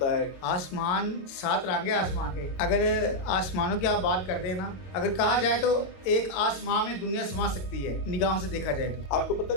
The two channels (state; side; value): late; right; 22 ms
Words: है? आसमान 7 रंग है आसमान के। अगर आसमानों की आप बात कर देना, अगर कहा जाए तो एक आसमान में दुनिया समा सकती है निगाहों से देखा जाए तो। आपको पता